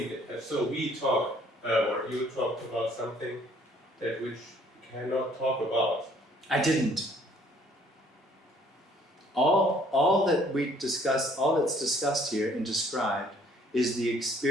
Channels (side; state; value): both; normal; correlation 0.60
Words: so we talk, or you talked about something that which you cannot talk about. I didn't. All that we discuss, all that's discussed here and described is the